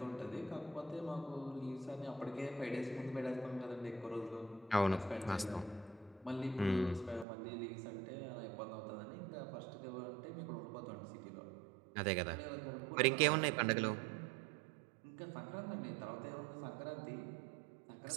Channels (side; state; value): left; drops out; at 7.2 s